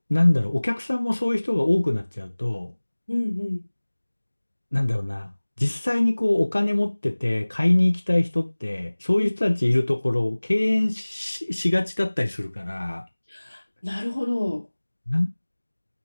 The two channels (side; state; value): both; inverted; correlation -1.00